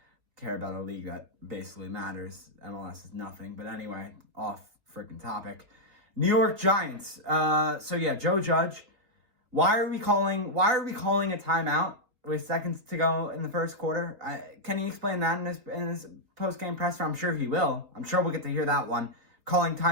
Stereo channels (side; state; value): left; late; 3.8 ms